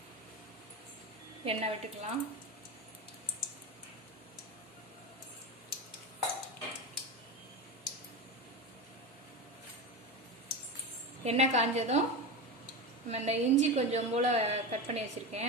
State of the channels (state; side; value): normal; both; correlation 0.21